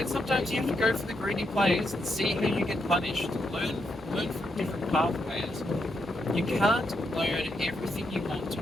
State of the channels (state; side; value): normal; both; correlation 0.81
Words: sometimes you have to go for the greedy plays and see how you get punished. Learn from different pathways. You can't learn everything you want to